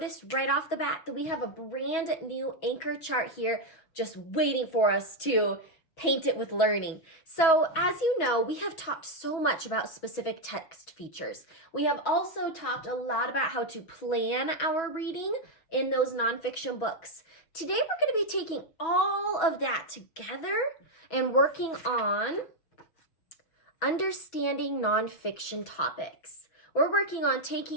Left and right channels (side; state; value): right; late; 6.1 ms